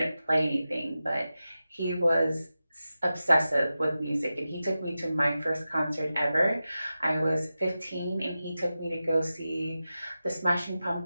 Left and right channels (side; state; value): both; inverted; correlation -0.93